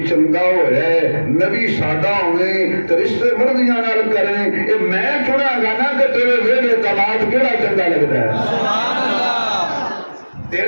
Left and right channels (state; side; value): inverted; both; correlation -1.00